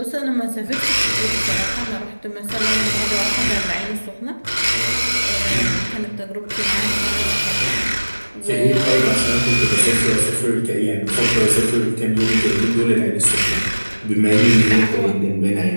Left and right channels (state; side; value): inverted; both; correlation -1.00